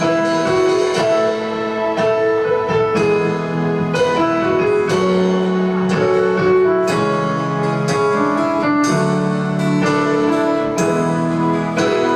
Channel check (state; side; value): identical; both; correlation 1.00